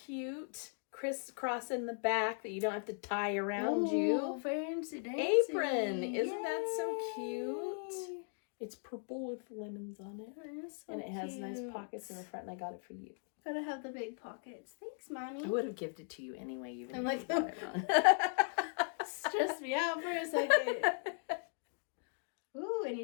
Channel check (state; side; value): silent; right; 52 dB below the other